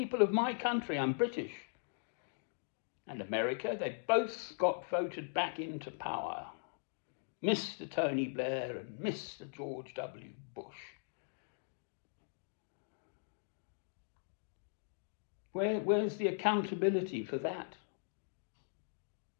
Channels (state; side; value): silent; right; digital silence